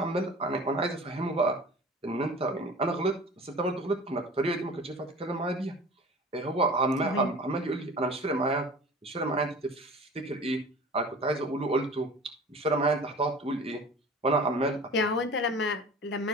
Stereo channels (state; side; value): normal; both; correlation 0.41